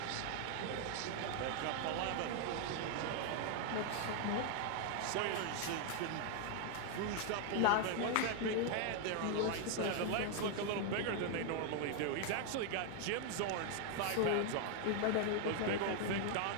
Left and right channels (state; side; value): different; both; correlation 0.01